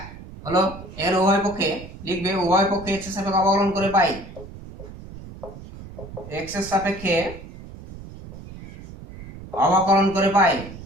হলো। এর উভয় পক্ষে লিখবে, উভয় পক্ষে এক্স এর সাপেক্ষে অবকলন করে পাই, এক্স এর সাপেক্ষে অবকলন করে পাই,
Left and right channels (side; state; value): right; noise; rumble, 15 dB below the sound